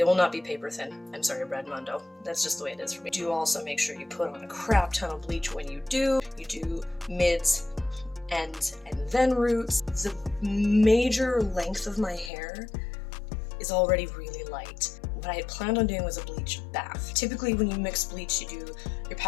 will not be paper thin. I'm sorry, Brad Mondo. That's just the way it is for me. Do also make sure you put on a crap ton of bleach when you do. You do mids, ends, and then roots. The major length of my hair is already really light. What I had planned on doing was a bleach bath. Typically when you mix bleach, you do your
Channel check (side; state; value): right; drops out; at 12.3 s